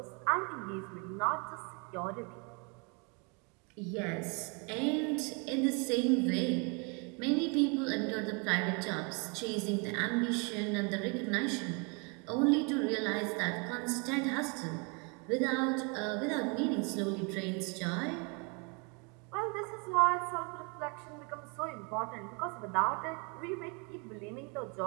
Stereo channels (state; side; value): quieter; left; 33.3 dB